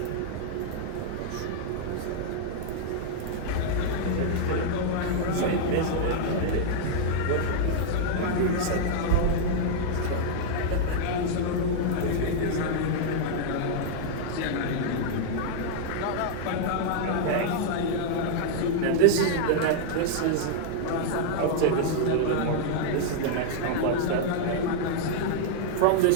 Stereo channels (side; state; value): both; different; correlation -0.01